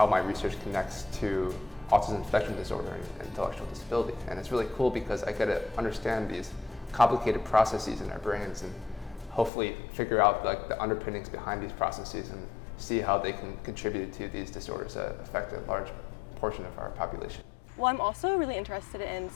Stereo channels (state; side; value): drops out; right; at 9.5 s